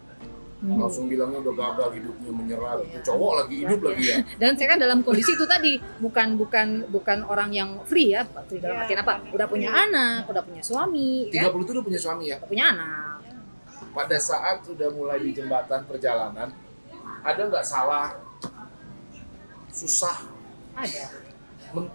langsung bilangnya udah gagal hidupnya, menyerah gitu. Iya. Cowok lagi hidup Iya. lagi ya. Dan saya kan dalam kondisi itu tadi bukan orang yang free ya, free dalam artian apa? Udah punya anak, udah punya suami, 30 kan? itu udah punya suami ya. Udah punya anak. Pada saat sudah mulai di jembatan perjalanan, ada nggak salah, susah, Ada.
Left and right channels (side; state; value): both; inverted; correlation -1.00